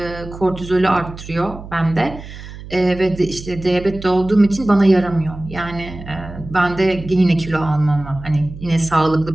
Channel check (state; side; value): noise; right; hum, 14 dB below the sound